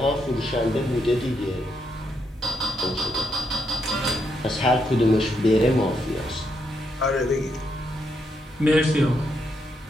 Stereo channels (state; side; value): normal; both; correlation 0.79